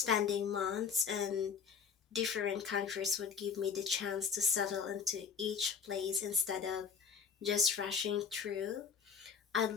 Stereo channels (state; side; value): quieter; right; 6.4 dB